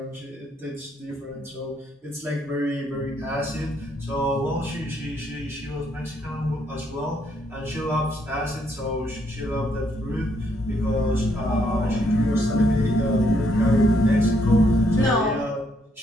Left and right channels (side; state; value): both; normal; correlation 0.72